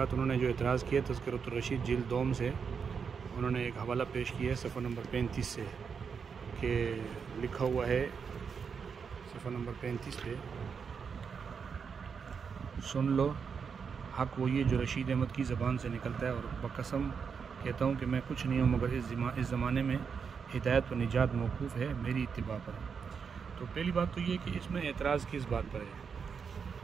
انہوں نے جو اعتراض کیا تذکرۃ الرشید جلد دوم سے، انہوں نے ایک حوالہ پیش کیا ہے صفحہ نمبر 35 سے، کہ لکھا ہوا ہے صفحہ نمبر 35 پہ، سن لو حق وہی ہے جو رشید احمد کی زبان سے نکلتا ہے، اور بقسم کہتا ہوں کہ میں کچھ نہیں ہوں مگر اس زمانے میں ہدایت و نجات موقوف ہے میری اتباع پر۔ تو پہلی بات تو یہ کہ اس میں اعتراض کس بات پر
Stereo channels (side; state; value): left; quieter; 6.2 dB